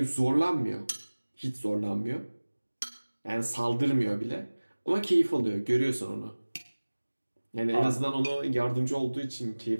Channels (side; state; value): both; inverted; correlation -1.00